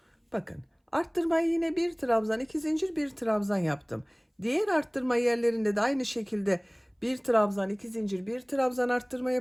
Bakın, arttırmayı yine bir trabzan, 2 zincir, bir trabzan yaptım. Diğer arttırma yerlerinde de aynı şekilde bir trabzan, 2 zincir, bir trabzan arttırma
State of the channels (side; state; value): both; identical; correlation 1.00